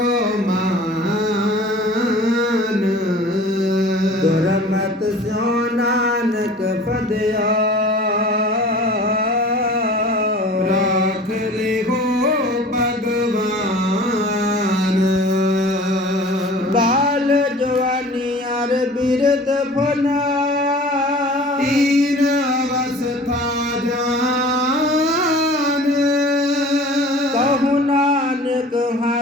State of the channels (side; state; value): both; normal; correlation 0.44